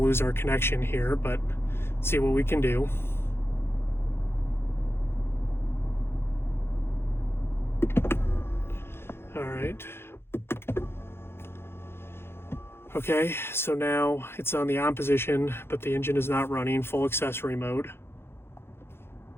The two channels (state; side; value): late; right; 0.11 ms